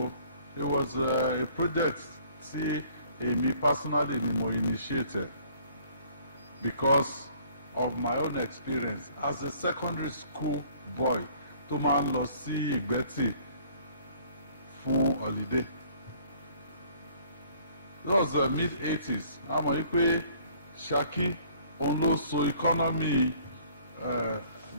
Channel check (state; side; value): inverted; both; correlation -0.58